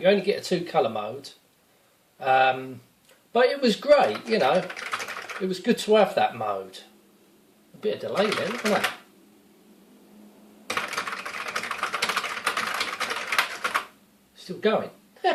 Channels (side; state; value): both; identical; correlation 1.00